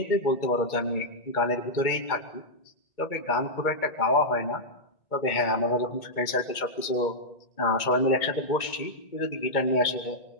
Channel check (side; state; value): right; late; 2.2 ms